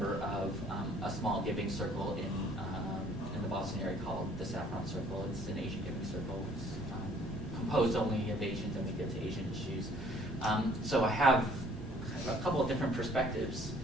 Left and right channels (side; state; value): both; normal; correlation 0.59